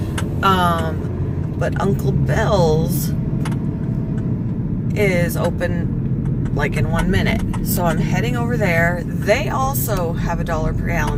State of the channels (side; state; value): both; identical; correlation 1.00